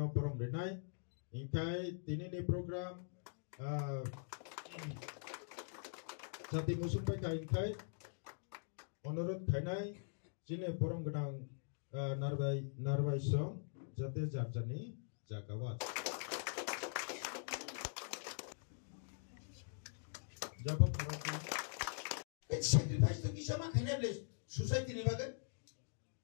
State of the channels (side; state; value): right; silent; digital silence